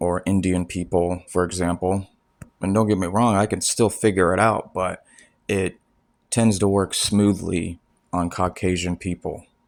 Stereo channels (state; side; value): identical; both; correlation 1.00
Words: or Indian people, for example. And don't get me wrong, I can still figure it out, but it tends to work smoothly on Caucasian people.